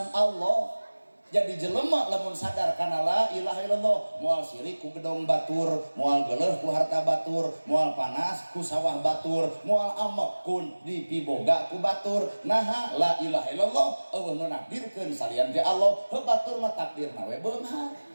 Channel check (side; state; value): both; inverted; correlation -1.00